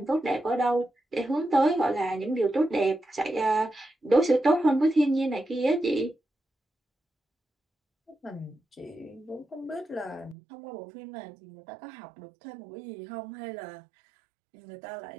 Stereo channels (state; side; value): drops out; left; at 10.4 s